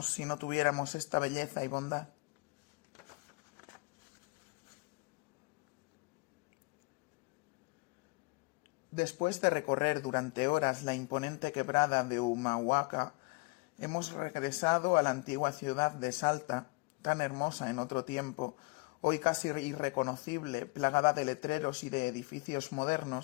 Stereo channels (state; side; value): quieter; right; 28.8 dB